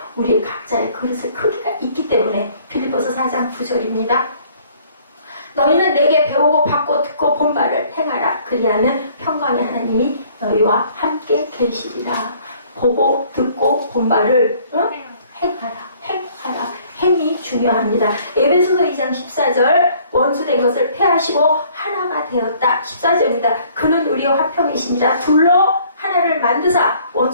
우리의 각자의 그릇의 크기가 있기 때문에. 빌립보서 4장 9절입니다. 너희는 내게 배우고 받고 듣고 본 바를 행하라. 그리하면 평강의 하나님이 너희와 함께 계시리라. 보고 듣고 본 바를 행하라. 행이 중요합니다. 에베소서 2장 14절 원수된 것을 패하시고 하나가 되었다. 14절입니다. 그는 우리와 화평이시니라. 둘로 하나를 만드사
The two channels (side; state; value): both; inverted; correlation -0.58